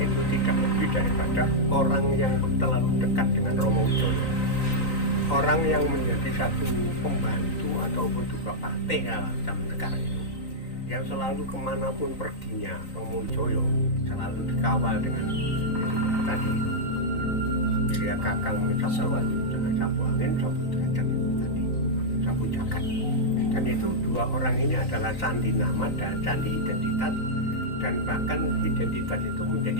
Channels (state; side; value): late; right; 3.9 ms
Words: itu tidak lebih daripada orang yang terlalu dekat dengan Romo Wijoyo. Orang yang menjadi satu pembantu ataupun juga partai zaman sekarang itu, yang selalu kemanapun perginya Romo Wijoyo selalu dikawal dengan itu tadi itu. Jadi ya kakang sapu angin, sapu derajat itu tadi, sapu jagat. Dan itu dua orang ini adalah sandi nama dan sandi identitas, dan bahkan identitas itu